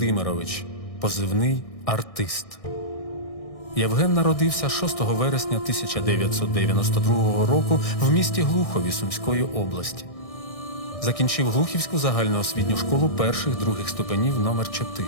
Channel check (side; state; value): right; late; 1.6 ms